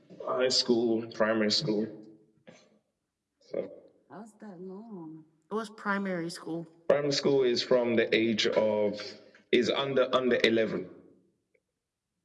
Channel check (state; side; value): identical; both; correlation 1.00